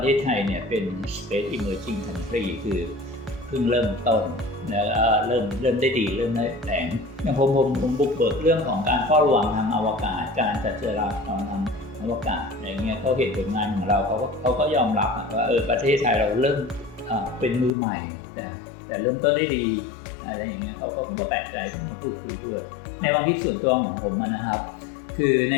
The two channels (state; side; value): drops out; right; at 17.7 s